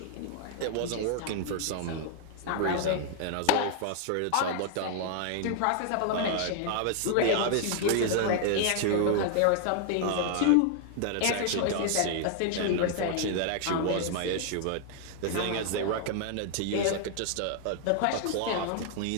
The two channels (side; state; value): both; different; correlation 0.00